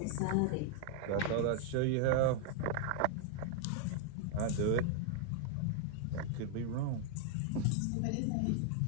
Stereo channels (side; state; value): both; different; correlation 0.00